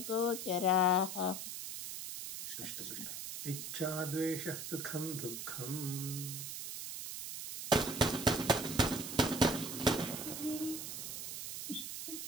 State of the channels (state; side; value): noise; right; hiss, 6 dB below the sound